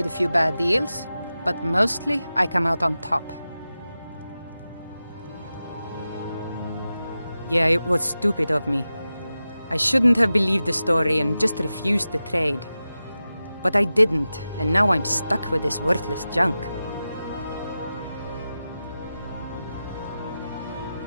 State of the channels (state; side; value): inverted; both; correlation -0.93